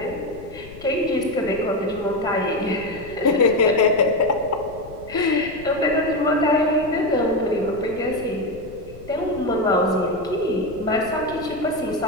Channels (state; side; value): noise; left; rumble, 17 dB below the sound